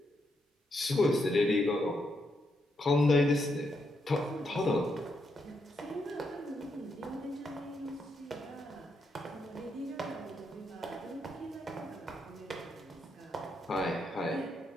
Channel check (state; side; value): normal; both; correlation 0.80